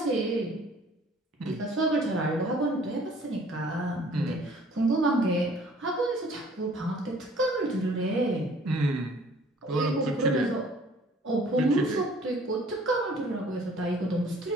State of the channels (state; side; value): normal; both; correlation 0.54